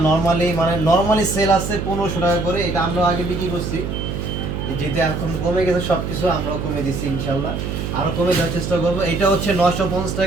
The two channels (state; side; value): noise; right; hum, 4 dB below the sound